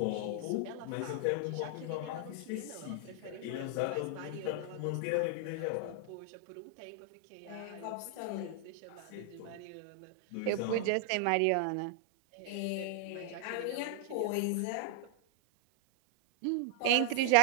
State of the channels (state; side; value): different; both; correlation 0.00